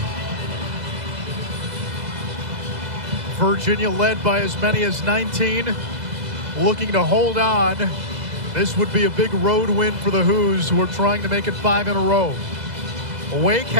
Virginia led by as many as 19, looking to hold on. This would be a big road win for the Hoos, who are trying to make it 5 in a row. Wake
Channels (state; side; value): late; left; 2.0 ms